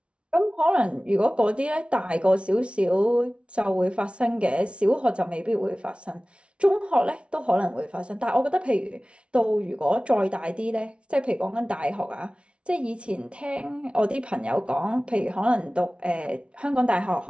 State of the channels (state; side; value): late; left; 0.059 ms